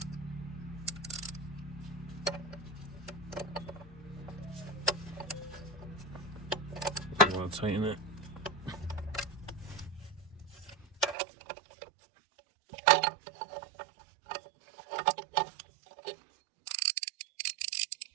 I'm gonna tighten it.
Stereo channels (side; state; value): left; drops out; at 11.2 s